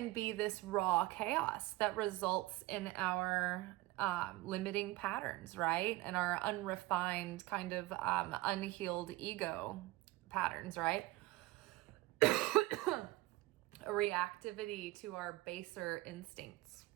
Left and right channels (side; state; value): left; quieter; 18.6 dB